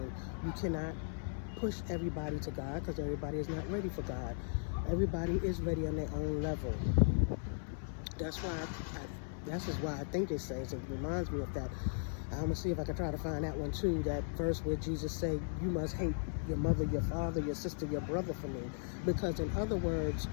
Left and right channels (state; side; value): silent; right; 53 dB below the other